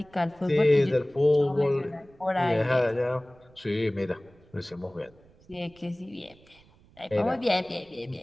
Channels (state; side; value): noise; right; rumble, 28 dB below the sound